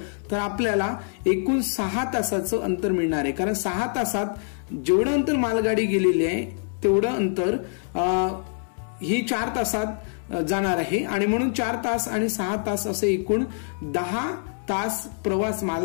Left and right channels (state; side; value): silent; right; 62 dB below the other